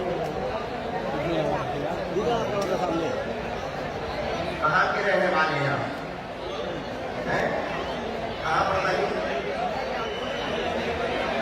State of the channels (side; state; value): both; identical; correlation 1.00